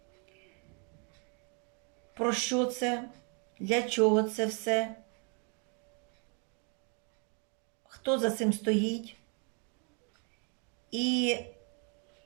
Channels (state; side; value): quieter; left; 37.6 dB